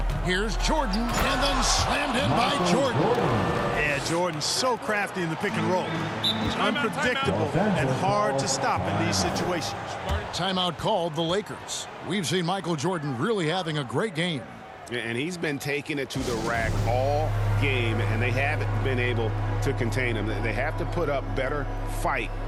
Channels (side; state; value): both; identical; correlation 1.00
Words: Here's Jordan, and then slammed in by Jordan. Yeah, Jordan's so crafty in the pick and roll. He's unpredictable and hard to stop in these situations. Timeout called the Lakers. We've seen Michael Jordan really having a great game. And he's been taking it to the rack all game, and they haven't been able to contain him. They have to put up better fight